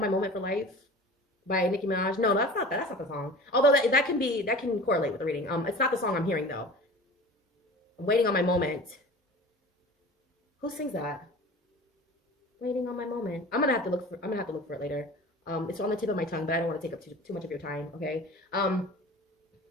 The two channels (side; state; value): both; normal; correlation 0.39